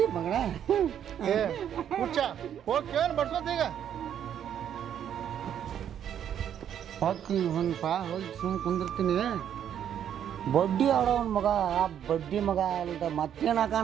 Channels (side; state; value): left; quieter; 9.5 dB